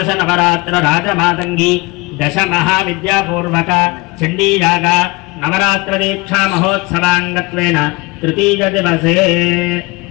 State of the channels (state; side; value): quieter; right; 24.5 dB